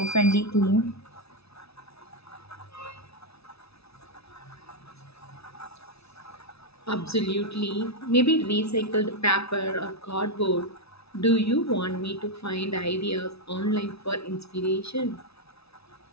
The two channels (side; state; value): right; late; 0.78 ms